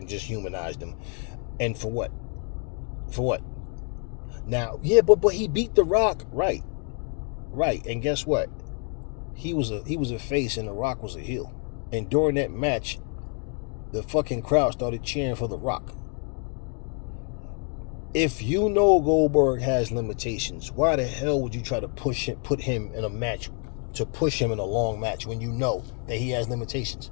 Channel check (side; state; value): right; quieter; 39.8 dB